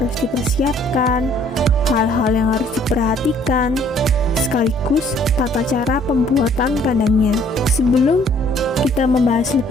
dipersiapkan, hal-hal yang harus diperhatikan, sekaligus tata cara pembuatan kandangnya. Sebelum kita membahas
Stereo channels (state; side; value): normal; both; correlation 0.60